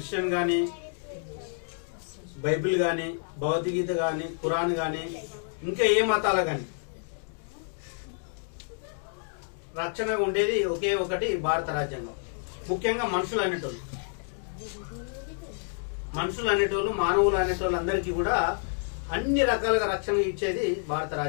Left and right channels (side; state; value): right; silent; digital silence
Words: గాని, బైబిల్ గాని, భగవద్గీత గాని, ఖురాన్ గాని, ఇంకా ఏ మతాల గాని రక్షణగా ఉండేది ఒకే ఒకటి భారత రాజ్యాంగం. ముఖ్యంగా మనుషులు అనేటోళ్ళు మానవులు అనేటోళ్ళు అందరికీ కూడా అన్ని రకాలుగా రక్షణ ఇచ్చేది భారత